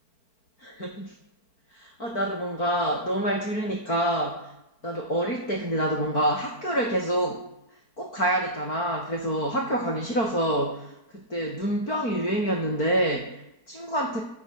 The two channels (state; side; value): late; right; 4.5 ms